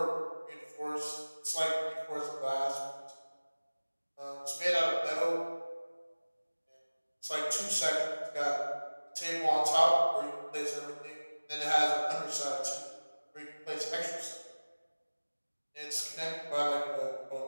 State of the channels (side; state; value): both; inverted; correlation -1.00